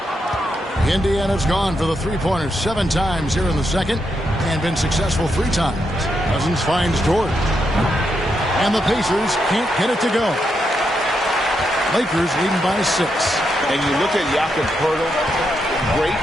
Indiana's gone for the three-pointers 7 times here in the second and been successful 3 times. Cousins finds Dort. And the Pacers can't get it to go. Lakers leading by 6. And you look at Jakob Poeltl, great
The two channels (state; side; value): normal; both; correlation 0.82